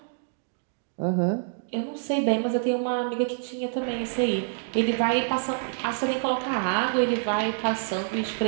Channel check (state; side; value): silent; left; digital silence